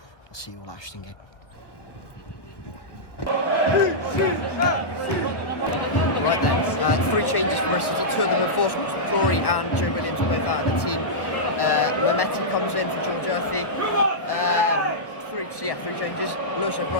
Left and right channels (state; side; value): late; right; 1.2 ms